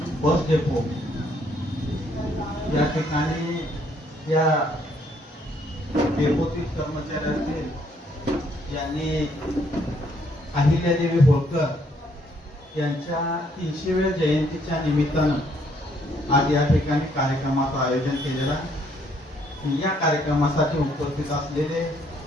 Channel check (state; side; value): normal; both; correlation 0.68